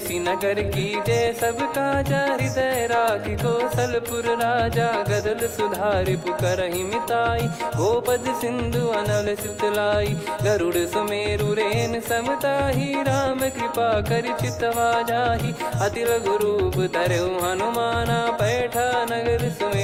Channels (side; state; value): both; identical; correlation 1.00